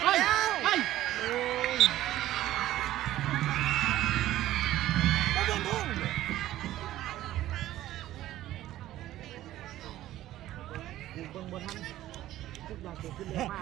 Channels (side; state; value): left; quieter; 14.2 dB